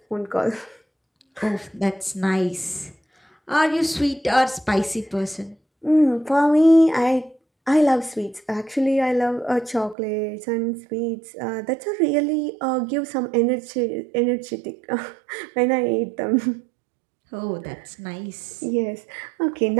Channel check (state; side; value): drops out; left; at 10.0 s